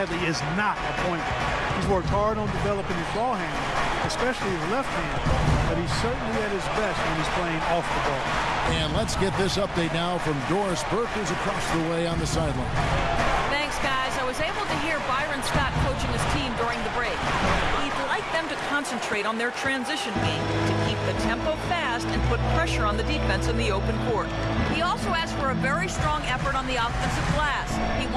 is not a point guard. He's worked hard on developing his ball handling, especially his left hand, but he's certainly at his best when he's playing off the ball. And let's get this update now from Doris Burke, who's across the way on the sideline. Thanks, guys. I was able to hear Byron Scott coaching his team during the break. He'd like them to concentrate on their transition game to keep the tempo fast and put pressure on the defense in the open court. He also asked for a very strong effort on the offensive glass. He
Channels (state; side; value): identical; both; correlation 1.00